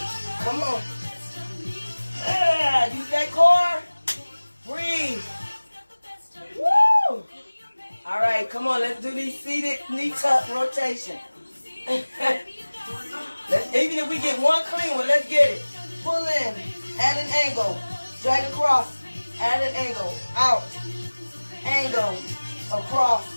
Come on. Use that core. Breathe. Woo! All right, come on. Let's do these seated knee tuck rotation. Even if we get one clean one, let's get it. Pull in at an angle. Drag across at an angle. Out. Angle. Across.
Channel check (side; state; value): both; inverted; correlation -1.00